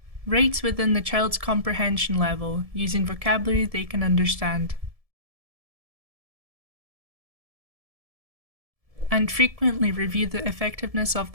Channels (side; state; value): left; late; 1.7 ms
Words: Rate within the child's comprehension level using vocabulary they can understand. And frequently review the effectiveness of